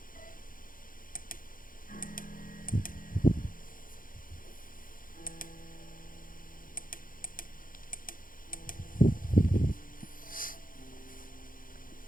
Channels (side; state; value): right; late; 0.40 ms